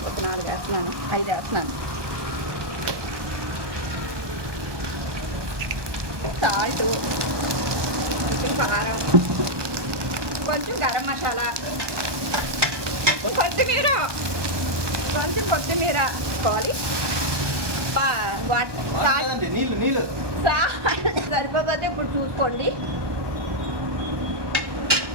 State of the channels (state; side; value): late; left; 1.2 ms